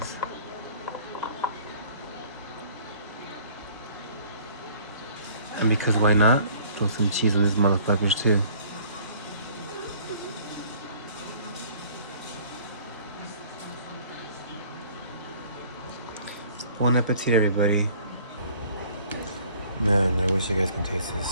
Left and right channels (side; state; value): both; inverted; correlation -0.54